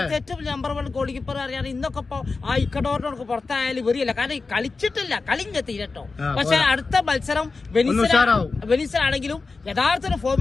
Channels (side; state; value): right; quieter; 4.1 dB